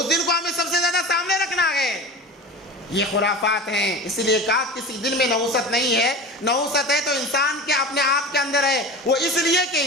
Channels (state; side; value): normal; both; correlation 0.32